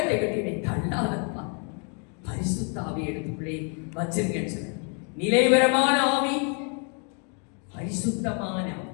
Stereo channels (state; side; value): quieter; right; 39.2 dB